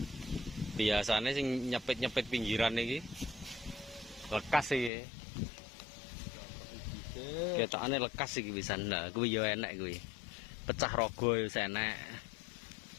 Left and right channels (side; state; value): right; drops out; at 4.9 s